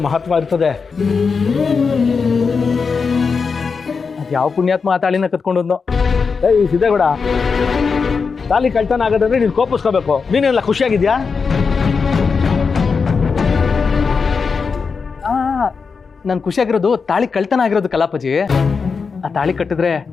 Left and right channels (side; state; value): right; quieter; 5.2 dB